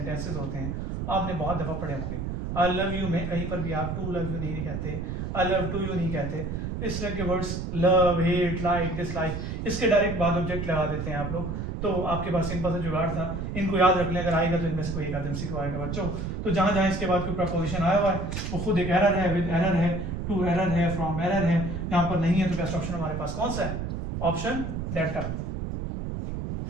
होते हैं, आपने बहुत दफा पढ़े होंगे। आई लव यू में कहीं पर भी आप टू लव यू नहीं कहते, आई लव टू यू नहीं कहते। इस तरह के words love, hate, like, dislike, इसके डायरेक्ट बाद ऑब्जेक्ट लगा देते हैं आप लोग, तो आपके पास सिंपल सा जुगाड़ था, इनको याद रख लें, अगर आएगा तो इनमें से कोई एक आदम को आएगा बच्चों। तो जहाँ जहाँ इसके बाद कोई प्रपोजिशन आया हुआ है वो खुद एक एरर है, विद एरर है, टू एरर है, फ्रॉम एरर है, यहाँ पर नहीं है तो बेस्ट ऑप्शन हमारे पास कौन सा है? Option delta.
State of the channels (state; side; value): noise; right; rumble, 4 dB below the sound